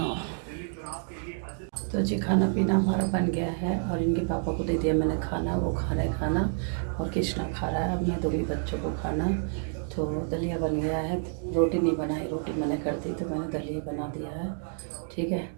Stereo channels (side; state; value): left; silent; 59 dB below the other